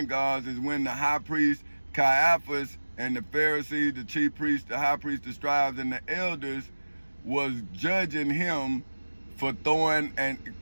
is when the high priest Caiaphas and the Pharisees, the chief priests, the high priests, the scribes, and the elders was judging him for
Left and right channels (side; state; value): both; inverted; correlation -1.00